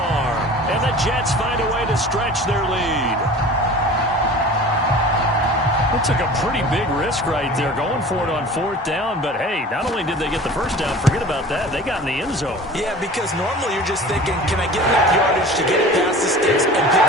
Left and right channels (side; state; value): both; normal; correlation 0.41